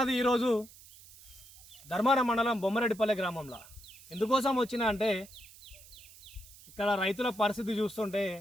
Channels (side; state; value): right; noise; hiss, 21 dB below the sound